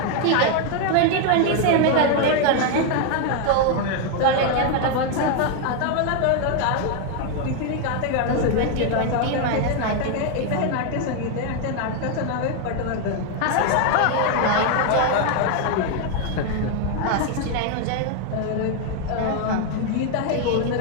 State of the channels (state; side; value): different; both; correlation 0.01